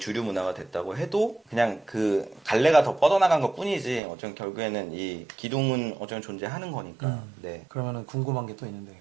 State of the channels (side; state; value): left; drops out; at 4.0 s